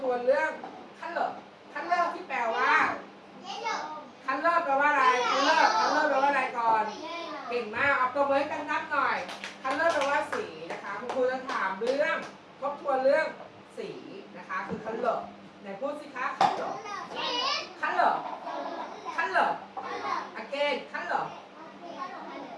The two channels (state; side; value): identical; both; correlation 1.00